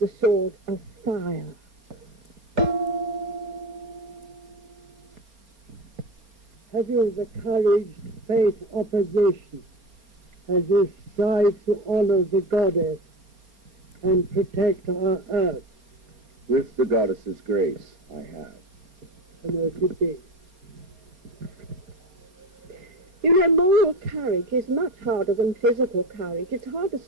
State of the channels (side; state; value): left; late; 4.3 ms